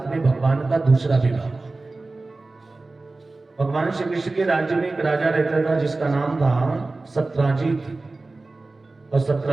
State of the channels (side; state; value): left; quieter; 3.3 dB